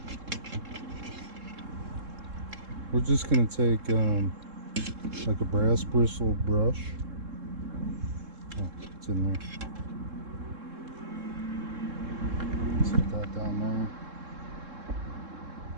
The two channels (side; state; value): left; late; 3.7 ms